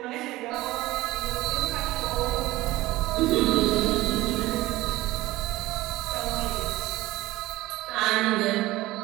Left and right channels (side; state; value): left; quieter; 18.1 dB